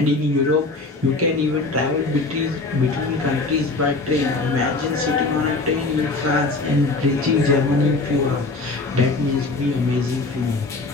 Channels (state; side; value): quieter; right; 3.4 dB